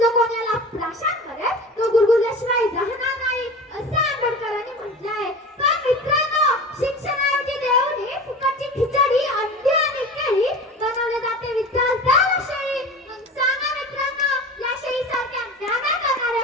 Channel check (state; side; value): normal; both; correlation 0.34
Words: जो कोणी याला प्राशन करेल तो गुरगुरल्याशिवाय राहणार नाही, असे आंबेडकरांनी म्हटले आहे. पण मित्रांनो, शिक्षणाऐवजी देऊन फुकटची खिचडी, अंडी आणि केळी बनवले जाते विद्यार्थ्याला शेळी. मग सांगा मित्रांनो, या शेळीसारख्या अन्याय